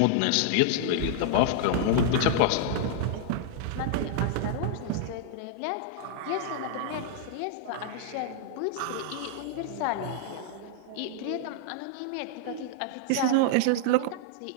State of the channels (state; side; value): different; both; correlation -0.01